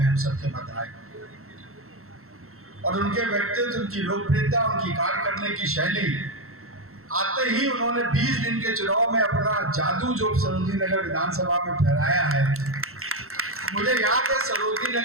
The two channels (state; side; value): late; left; 0.63 ms